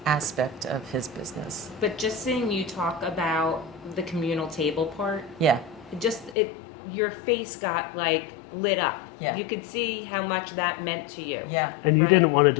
aspect of his business. But just seeing you talk about the communal table part, Yeah, your face got like lit up. Yeah. You could see how much that meant to you. yeah. And you Right. didn't want to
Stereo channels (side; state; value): right; drops out; at 6.4 s